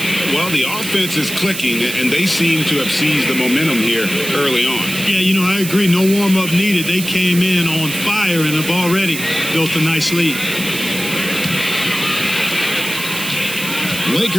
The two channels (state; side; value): noise; right; hiss, 7 dB below the sound